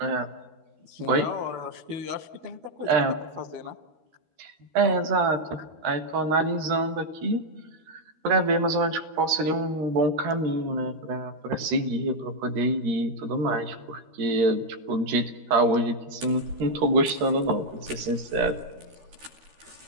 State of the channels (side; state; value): left; late; 13 ms